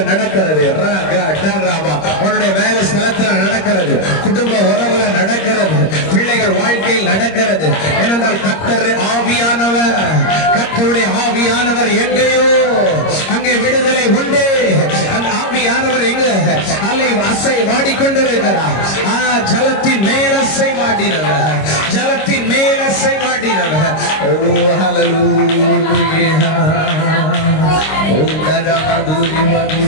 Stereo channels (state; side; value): late; right; 26 ms